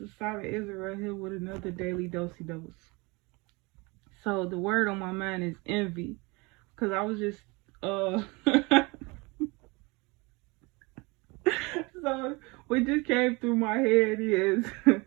Assata Israel here with another daily doce dose. So the word on my mind is envy, cause I was just so what just came through my head is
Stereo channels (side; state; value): left; quieter; 26.3 dB